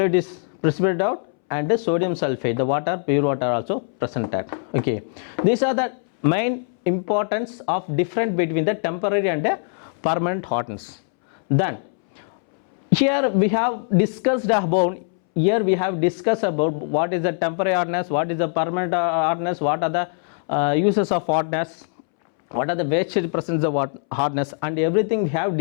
is precipitated out, and the sodium sulfate, the water, pure water also presented. Okay, these are the main importance of difference between the temporary and the permanent hardness. Then here we have discussed about what is the temporary hardness, what is the permanent hardness, what are the uses of hardness, what are the wastage presence of hardness, and everything we have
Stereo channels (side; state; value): right; silent; 64 dB below the other